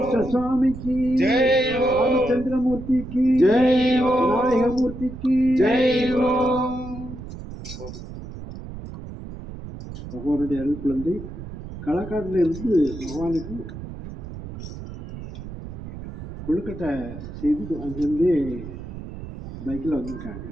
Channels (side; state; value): right; noise; rumble, 11 dB below the sound